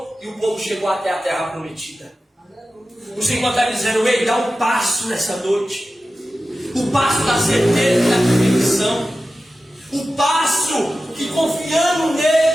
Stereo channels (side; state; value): both; normal; correlation 0.94